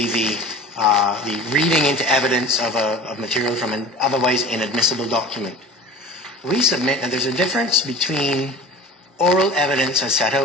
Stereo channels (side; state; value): both; normal; correlation 0.37